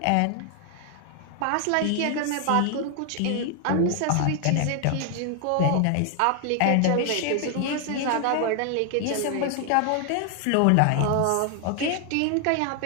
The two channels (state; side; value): different; both; correlation 0.00